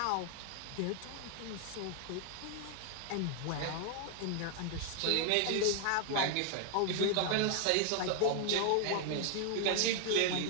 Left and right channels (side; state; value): both; different; correlation 0.00